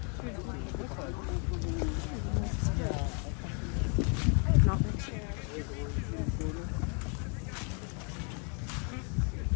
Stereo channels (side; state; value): right; quieter; 38.2 dB